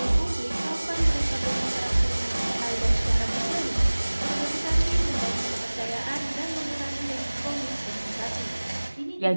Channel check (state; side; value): inverted; both; correlation -1.00